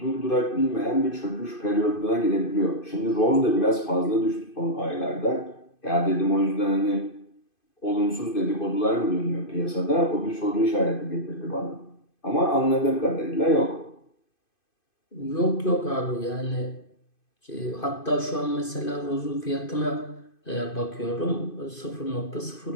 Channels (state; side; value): late; right; 2.5 ms